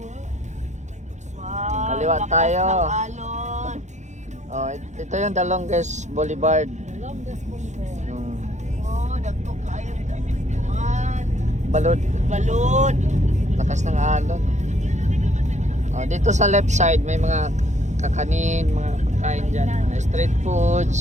Wow, Kaliwa lakas tayo. ng alon. Oh, ito yung The Longest Boulevard. Oh, dagko kayo dagkuan. Balod. Balod. Lakas ng alon. Oh, dito sa left side may mga kakanin, mga pagkain dyan, mga street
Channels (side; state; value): left; late; 0.34 ms